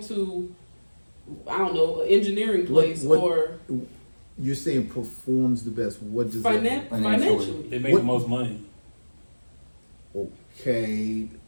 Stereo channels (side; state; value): both; inverted; correlation -1.00